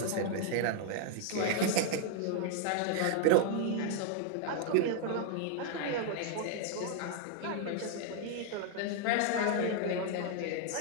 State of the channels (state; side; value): different; both; correlation 0.00